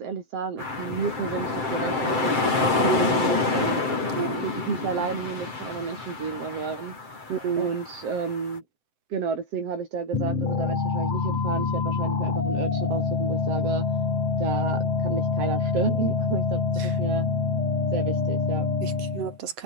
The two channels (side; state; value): left; late; 7.7 ms